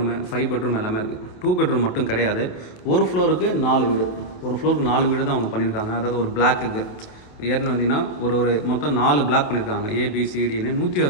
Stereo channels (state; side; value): late; right; 28 ms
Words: 5 பெட்ரூம் எல்லாமே இருக்குது. 2 பெட்ரூம் மட்டும் கிடையாது. ஒரு ஃப்ளோருக்கு 4 வீடு, ஒரு ஃப்ளோருக்கு 4 வீடு தான் அவங்க பண்ணியிருக்காங்க. அதாவது ஒரு பிளாக்குக்கு ஏறின வந்தீங்கன்னா ஒரு மொத்தம் 4 பிளாக் பண்ணியிருக்காங்க. ABCDன்னு